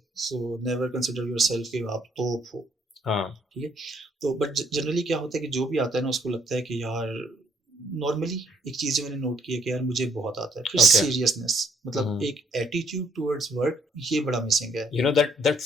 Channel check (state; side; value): normal; both; correlation 0.68